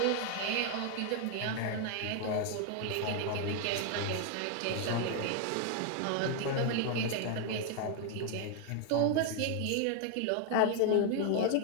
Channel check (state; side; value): different; both; correlation 0.00